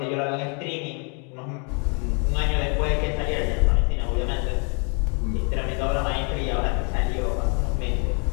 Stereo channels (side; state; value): right; quieter; 37.3 dB